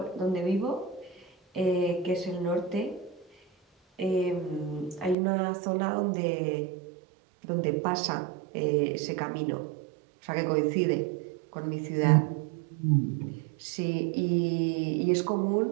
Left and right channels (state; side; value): drops out; left; at 5.2 s